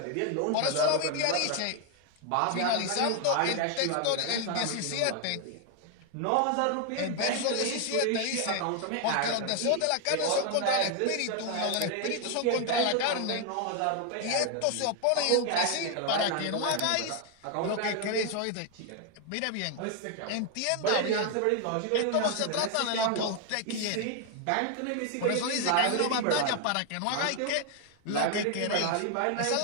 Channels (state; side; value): different; both; correlation 0.01